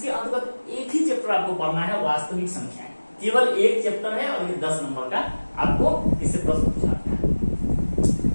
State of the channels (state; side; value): inverted; both; correlation -1.00